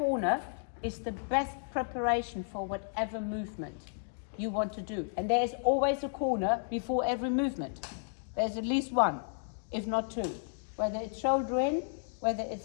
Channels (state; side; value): silent; right; digital silence